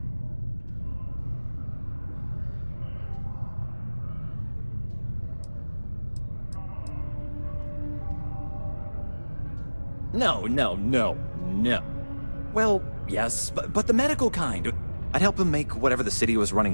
No. Well, yes, but the medical kind. I'd help him make whatever the city was running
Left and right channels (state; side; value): inverted; both; correlation -1.00